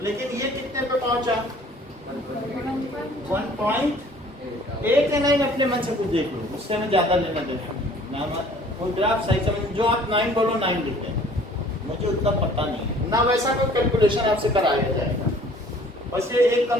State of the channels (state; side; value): normal; both; correlation 0.53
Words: लेकिन ये कितने पे पहुंचा 1.8 या 9, अपने मन से कुछ देख लो, उससे हमें ज्यादा लेना देना, कोई ग्राफ सही समझ, जो आप 9 बोलो 9 लिखते हैं, मुझे उतना पता नहीं है ना, वैसा कोई कैलकुलेशन आपसे कराया जाएगा, बस ये एक